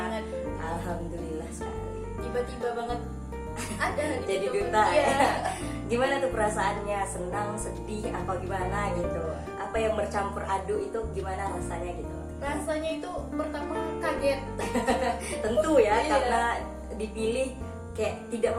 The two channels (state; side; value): identical; both; correlation 1.00